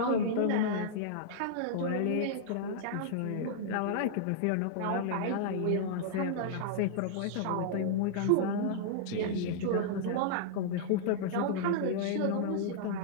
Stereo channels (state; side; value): different; both; correlation -0.02